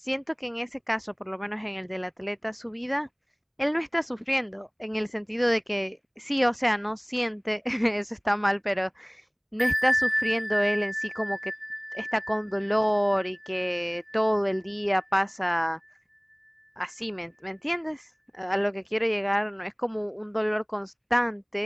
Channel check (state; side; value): identical; both; correlation 1.00